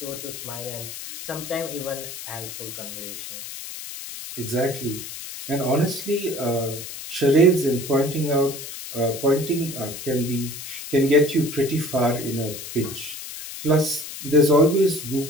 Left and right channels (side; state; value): left; noise; hiss, 10 dB below the sound